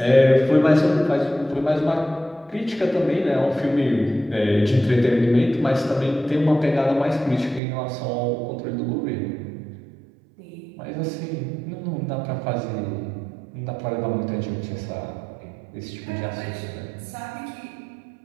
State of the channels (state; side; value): drops out; left; at 7.6 s